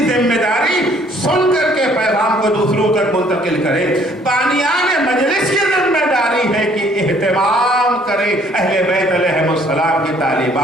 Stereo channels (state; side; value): normal; both; correlation 0.60